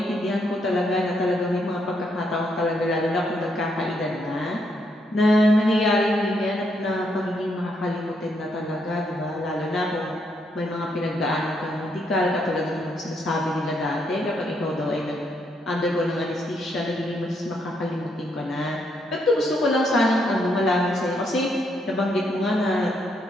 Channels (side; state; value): both; normal; correlation 0.75